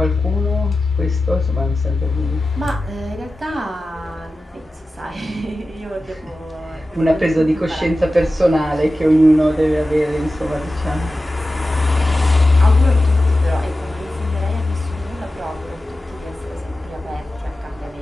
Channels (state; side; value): normal; both; correlation 0.94